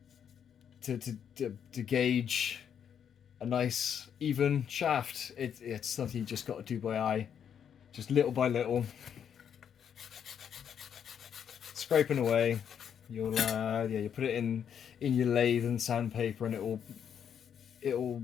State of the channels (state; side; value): quieter; right; 8.3 dB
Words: gauge a nice even shaft. It's something you just got to do by eye, just little by little, scraping away. You'll put it in your lathe and sandpaper, and it'll